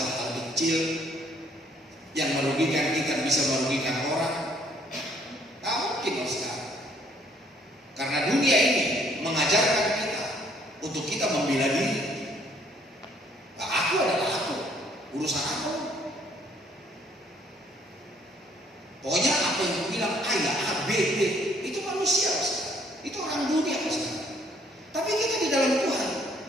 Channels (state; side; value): normal; both; correlation 0.64